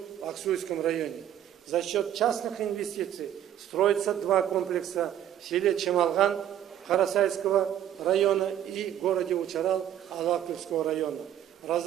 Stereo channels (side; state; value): left; quieter; 10.9 dB